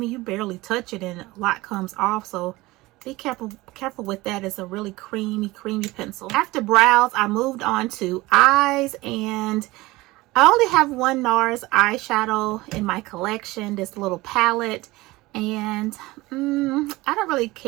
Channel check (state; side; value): quieter; left; 20.2 dB